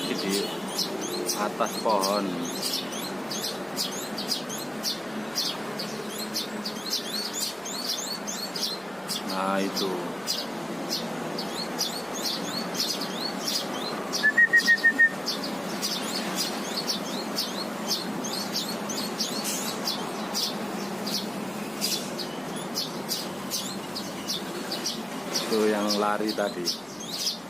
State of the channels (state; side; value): noise; left; hum, 29 dB below the sound